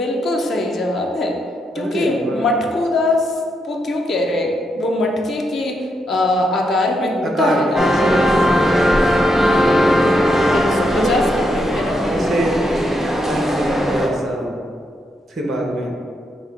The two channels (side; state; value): both; normal; correlation 0.80